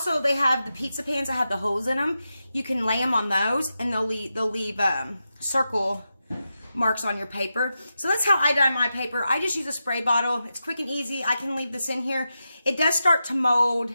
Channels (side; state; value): both; inverted; correlation -0.89